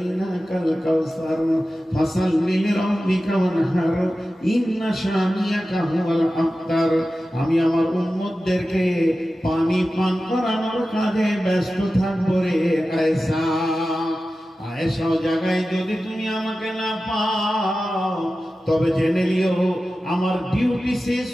কাউসার ফাসাল্লি লিরাব্বিকা ওয়ানহার ইন্না শানিয়াকা হুয়াল আবতার। আমি আমার উম্মতদেরকে পানি পান করানোর কাজে ব্যস্ত থাকবো রে আয়েশা। আয়েশা জায়গায় যদি তুমি আমাকে না পাও তবে জেনে নিও আমার ডিউটি শেষ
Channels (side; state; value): both; normal; correlation 0.94